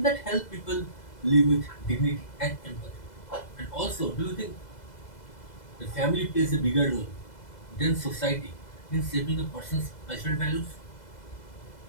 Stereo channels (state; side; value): late; right; 2.0 ms